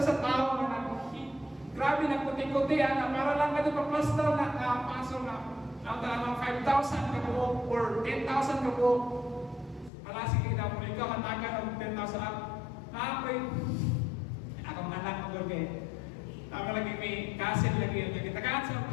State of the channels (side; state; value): right; drops out; at 9.9 s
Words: sa tao nga grabe nagputi-puti na para lang ka ito pa-plaster na pasol na ang talagang 5,000 ka buo or 10,000 ka buo. Wala sige na mo ikaw matagan ng 10,000 up. Naapoy akong anak mo doon kayo. Tama lagi may kasil lagi yun. Nagitagaan sa